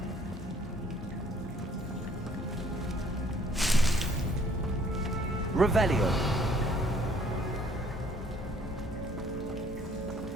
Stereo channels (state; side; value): normal; both; correlation 0.60